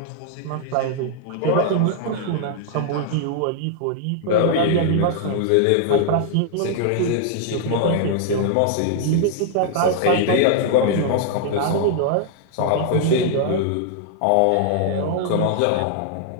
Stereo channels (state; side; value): different; both; correlation -0.01